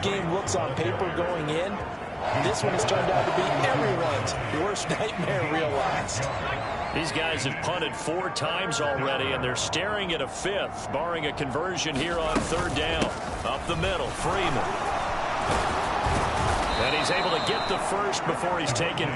game looks on paper going in. This one has turned out to be everyone's worst nightmare realized. These guys have punted 4 times already, and they're staring at a 5th, barring a conversion here on 3rd down. Up the middle, Freeman. And he's able to get the first before he's taken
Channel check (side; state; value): both; identical; correlation 1.00